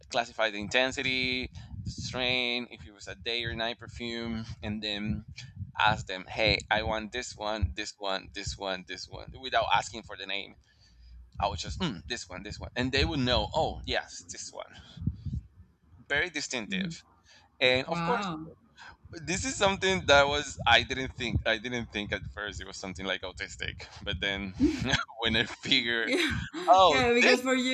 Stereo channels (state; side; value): identical; both; correlation 1.00